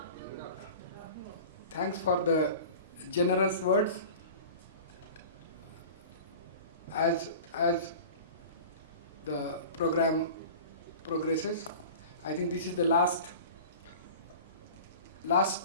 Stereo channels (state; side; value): inverted; both; correlation -0.38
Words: Thanks for the generous words. As the program progresses, I think this is the last